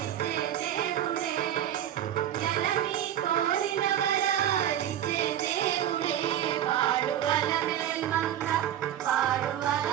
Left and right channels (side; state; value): left; quieter; 11.0 dB